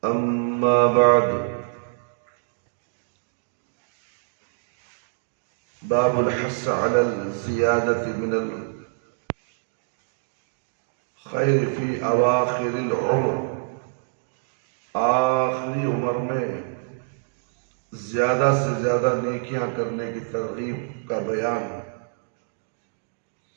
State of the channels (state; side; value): silent; left; digital silence